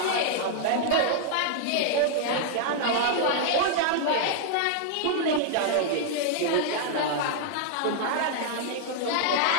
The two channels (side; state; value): both; different; correlation -0.01